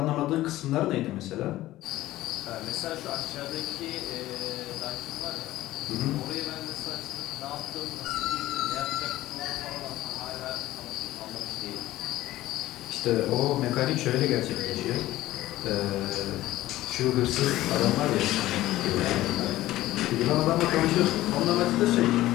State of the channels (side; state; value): right; quieter; 15.8 dB